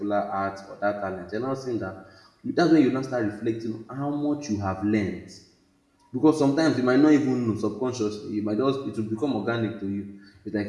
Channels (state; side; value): identical; both; correlation 1.00